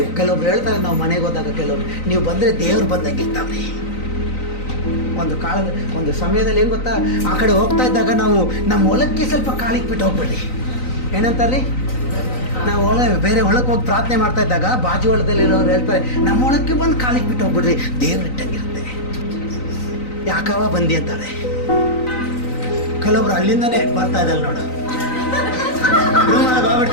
ಕೆಲವೊಬ್ರು ಹೇಳ್ತಾರೆ, ನಾವು ಮನೆಗೆ ಹೋದಾಗ ಕೆಲವರು ನೀವು ಬಂದರೆ ದೇವ್ರು ಬಂದಂಗಿರ್ತಾವ್ರಿ. ಒಂದು ಸಮಯದಲ್ಲಿ ಏನು ಗೊತ್ತಾ, ಆ ಕಡೆ ಹೋಗ್ತಾ ಇದ್ದಾಗ ನಾವು ನಮ್ಮ ಹೊಲಕ್ಕೆ ಸ್ವಲ್ಪ ಕಾಲಿಕ್ಬಿಟ್ಟು ಹೋಗ್ಬೇಡ್ರಿ. ಏನಂತಾರ್ರಿ? ನಾವು ಬೇರೆ ಹೊಳಕ್ಕೆ ಹೋಗಿ ಪ್ರಾರ್ಥನೆ ಮಾಡ್ತಾ ಇದ್ದಾಗ ಬಾಜು ಹೊಲದಲ್ಲಿರೋರು ಹೇಳ್ತಾರೆ, ನಮ್ಮ ಹೊಳಕ್ಕೆ ಬಂದು ಕಾಲಿಕ್ಬಿಟ್ಟು ಹೋಗ್ಬಿಡ್ರಿ, ದೇವ್ರು ಇಟ್ಟಂಗಿರುತ್ತೆ. ಯಾಕವ ಬಂದಿ ಅಂತಾರೆ. ಕೆಲವೊಬ್ರು ಅಲ್ಲಿಂದನೇ ಬರ್ತಾ ಇದ್ದಲ್ಲ ನೋಡು, ರೂಮಲ್ಲಿ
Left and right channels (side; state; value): right; late; 3.9 ms